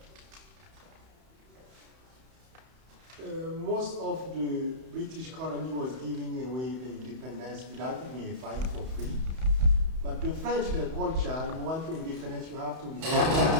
Most of the British colony was giving away the independence without even a fight for free. But the French, their culture, you want to independence, you have to get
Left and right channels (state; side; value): late; left; 31 ms